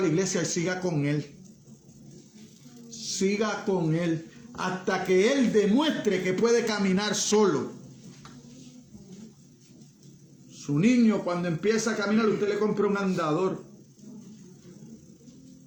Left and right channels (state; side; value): identical; both; correlation 1.00